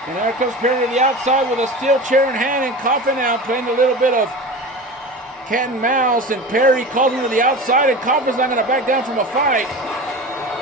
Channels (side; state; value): both; normal; correlation 0.31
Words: And there comes Perry to the outside with a steel chair in hand, and Coffin now playing a little bit of cat and mouse, and Perry calls him to the outside, and Coffin's not going to back down from a fight.